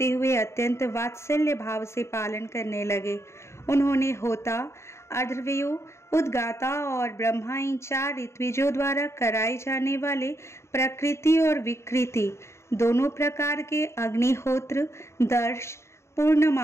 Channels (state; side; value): late; right; 0.13 ms